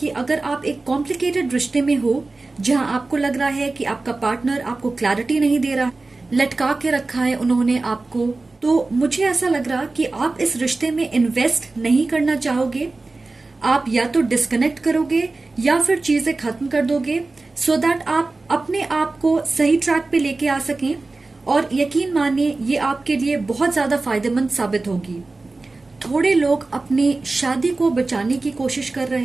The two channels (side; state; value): left; quieter; 3.4 dB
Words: अगर आप एक कॉम्प्लिकेटेड रिश्ते में हो जहां आपको लग रहा है कि आपका पार्टनर आपको क्लैरिटी नहीं दे रहा, लटका के रखा है उन्होंने आपको, तो मुझे ऐसा लग रहा कि आप इस रिश्ते में इन्वेस्ट नहीं करना चाहोगे। आप या तो डिस्कनेक्ट करोगे या फिर चीजें खत्म कर दोगे, सो दैट आप अपने आप को सही ट्रैक पे लेके आ सकें। और यकीन मानिए ये आपके लिए बहुत ज्यादा फायदेमंद साबित होगी। थोड़े लोग अपनी शादी को बचाने की कोशिश कर